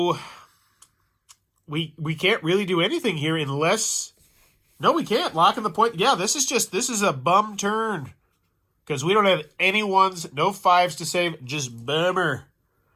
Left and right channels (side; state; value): both; identical; correlation 1.00